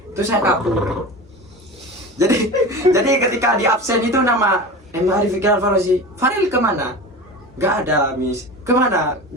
itu saya kabur. Jadi ketika di absen itu nama Arif Fikri Al-Farozi, Farel kemana? Gak ada Miss. Kemana?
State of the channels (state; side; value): normal; both; correlation 0.31